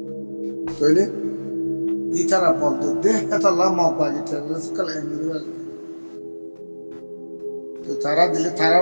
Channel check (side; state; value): both; inverted; correlation -1.00